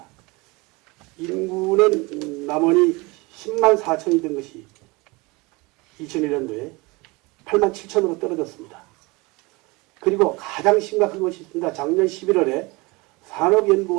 인구는 남원이 10만 4천이 된 것이 2001년도에 8만 7천으로 떨어졌습니다. 그리고 가장 심각한 것이 있습니다. 작년 11월에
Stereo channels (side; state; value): left; quieter; 24.9 dB